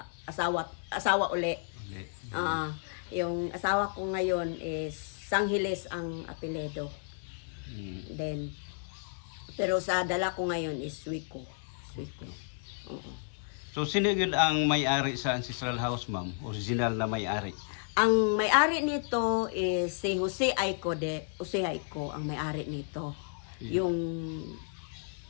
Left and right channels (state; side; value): silent; right; 56 dB below the other